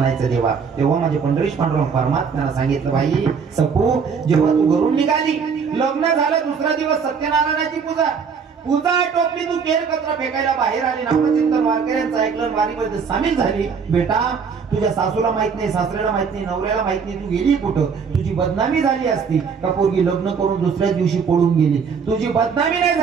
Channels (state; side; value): quieter; left; 6.0 dB